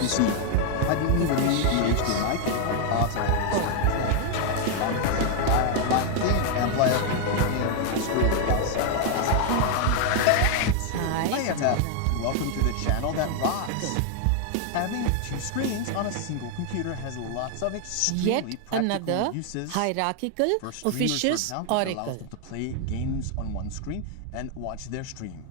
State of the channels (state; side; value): different; both; correlation 0.01